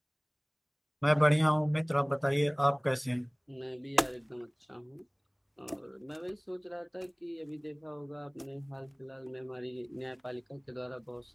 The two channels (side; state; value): both; identical; correlation 1.00